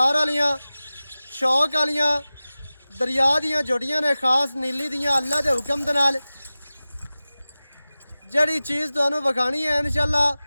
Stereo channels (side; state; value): both; inverted; correlation -0.96